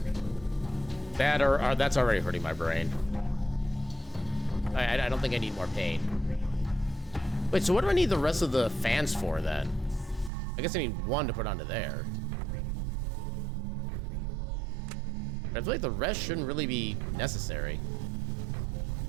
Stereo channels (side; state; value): left; drops out; at 10.3 s